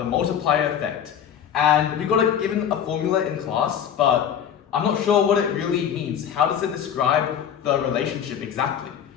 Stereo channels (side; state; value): right; quieter; 8.8 dB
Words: multiplier effect. And we got given a formula in class, but I'm not sure what it really means. How does it describe the relationship exactly?